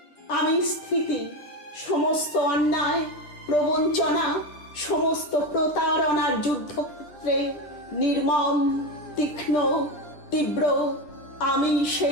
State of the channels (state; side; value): late; right; 10 ms